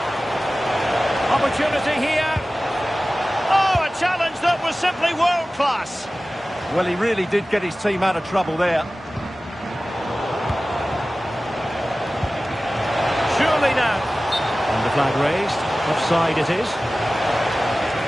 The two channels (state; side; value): normal; both; correlation 0.96